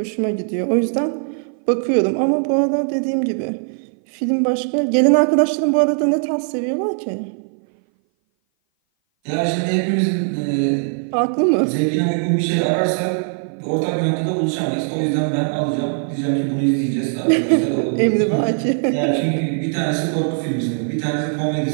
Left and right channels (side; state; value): left; silent; 58 dB below the other